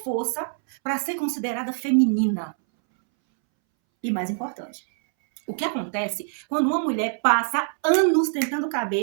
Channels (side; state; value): left; silent; 62 dB below the other